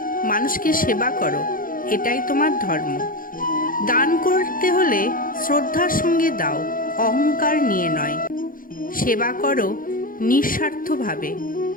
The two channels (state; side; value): late; right; 0.40 ms